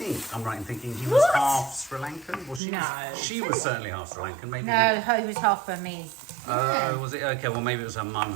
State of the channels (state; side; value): drops out; left; at 2.6 s